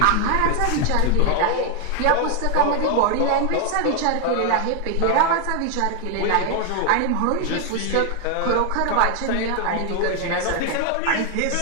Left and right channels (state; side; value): different; both; correlation 0.01